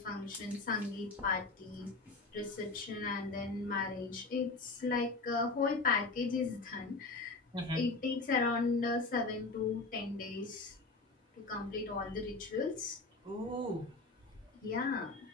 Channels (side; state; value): right; quieter; 3.6 dB